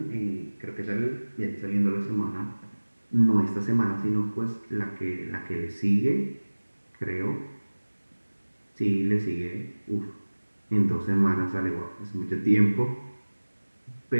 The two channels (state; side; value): inverted; both; correlation -1.00